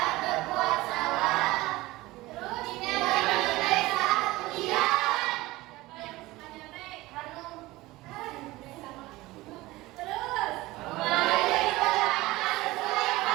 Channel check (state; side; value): quieter; left; 19.3 dB